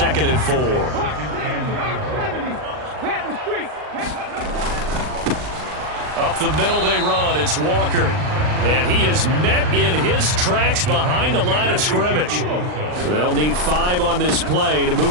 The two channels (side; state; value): left; late; 39 ms